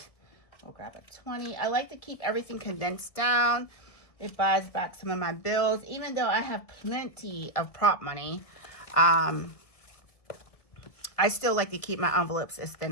We'll grab a 20. I like to keep everything condensed down. It buys back some of my bills, even though I have plenty of prop money. I still like to keep my envelopes as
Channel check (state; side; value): late; right; 1.7 ms